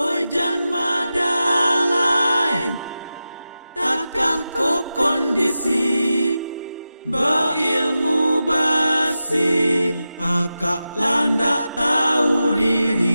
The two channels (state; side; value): inverted; both; correlation -0.92